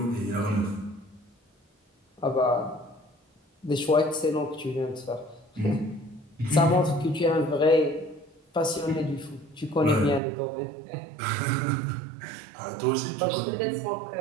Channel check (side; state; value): left; drops out; at 10.2 s